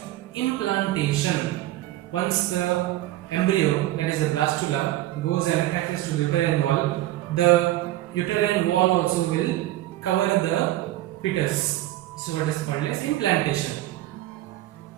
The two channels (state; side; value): quieter; left; 15.4 dB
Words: implantation. Once the embryo, that is the blastula, goes and attaches to the uterine wall, the uterine wall also will cover the fetus. So what is called as implantation.